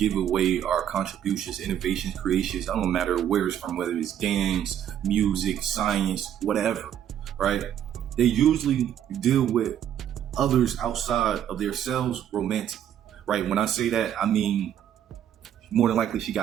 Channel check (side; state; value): left; quieter; 10.1 dB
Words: away our contributions, innovations, creations, I don't matter where it's from, whether it's dance, music, science, whatever, right? They usually deal with others outside of themselves romantically, right? When I say that, I mean, more than likely she